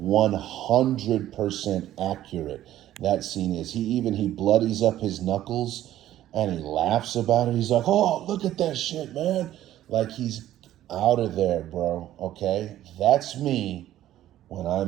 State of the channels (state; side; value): quieter; left; 13.1 dB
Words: accurate that scene is. He bloodies up his knuckles and he laughs about it. He's like, oh, look at that shit, man. Like, he's out of there, bro, okay? That's me when